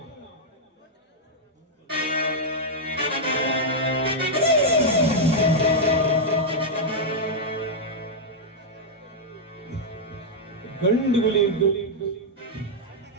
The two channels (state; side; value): normal; both; correlation -0.04